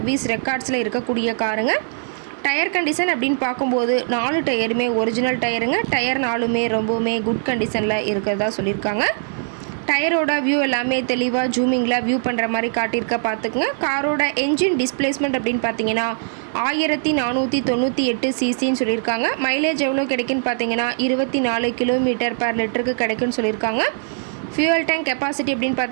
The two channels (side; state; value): left; silent; digital silence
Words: ரெக்கார்ட்ஸில் இருக்கக்கூடிய காருங்க. டயர் கண்டிஷன் அப்படின்னு பார்க்கும்போது 4 டயருமே ஒரிஜினல் டயருங்க. டயர் 4மே ரொம்பவுமே குட் கண்டிஷனில் இருக்கிறதா சொல்லியிருக்காங்க. டயரோட வியூ எல்லாமே தெளிவாக ஜூமிங்கில் வியூ பண்ணுற மாதிரி காட்டியிருக்க பார்த்துக்குங்க. காரோட என்ஜின் டிஸ்பிளேஸ்மெண்ட் அப்படின்னு பார்த்தீங்கன்னா 1498 சிசின்னு சொல்லியிருக்காங்க. மைலேஜ் எவ்வளோ கிடைக்குன்னு பார்த்தீங்கன்னா 24 கிலோமீட்டர் பர் லிட்டருக்கு கிடைக்குன்னு சொல்லியிருக்காங்க. ஃபியூவல் டேங்க் கெப்பாசிட்டி அப்படின்னு